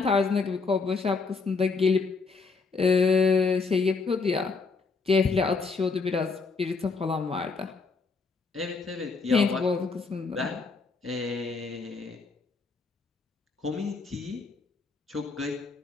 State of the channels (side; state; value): right; quieter; 4.4 dB